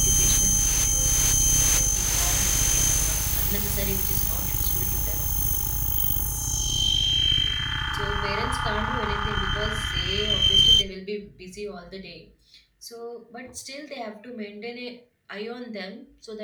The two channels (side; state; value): both; identical; correlation 1.00